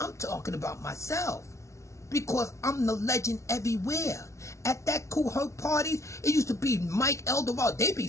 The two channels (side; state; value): right; late; 0.14 ms